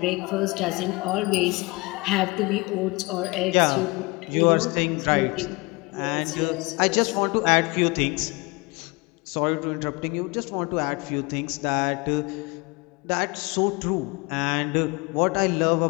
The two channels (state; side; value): quieter; right; 25.9 dB